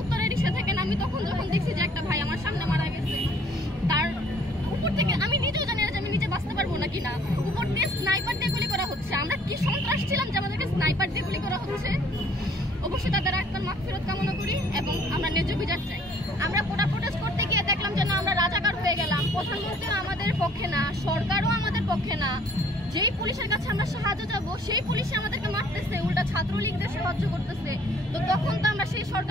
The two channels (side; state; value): both; normal; correlation 0.58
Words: উত্তরের রিক্সা থেকে নামি তখন যখন দেখছি যে একটা ভাই আমার সামনে মারা গেছে, তার উপর থেকে আমি নিজেও জানি না যে আমি নিজে বাঁচতে পারবো নাকি না, উপর দিয়ে স্নাইপার দিয়ে গুলি করা হচ্ছে। আমরা কি সন্ত্রাস ছিলাম যে আমাদেরকে স্নাইপার দিয়ে গুলি করা হচ্ছে? অবশ্যই তাদের আত্মার মাগফিরাত কামনা করি এবং আমরা ন্যায্য বিচার চাই। আমরা প্রোটেস্ট করতে গিয়ে দেখলাম যে না, আমরা রাজাকার হয়ে গেলাম। প্রধানমন্ত্রীও আমাদের পক্ষে না, সরকারও আমাদের পক্ষে না। যেই পুলিশের কাছে আমরা সাহায্য যাবো সেই পুলিশে আমাদেরকে মারতেছে, উল্টা ছাত্রলীগদের সাহায্য করতেছে। তো তখন তো আমরা সেই